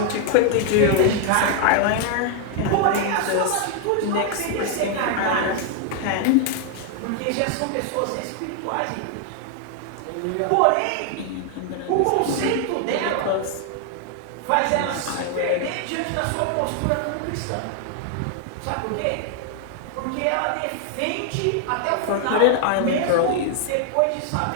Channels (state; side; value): different; both; correlation 0.00